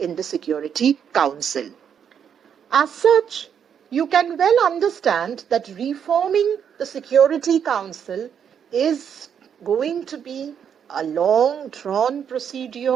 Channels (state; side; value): quieter; left; 8.0 dB